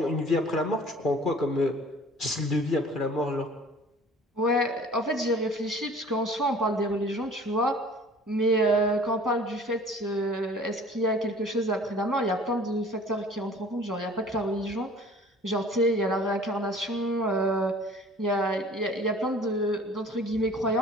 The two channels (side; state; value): both; normal; correlation 0.48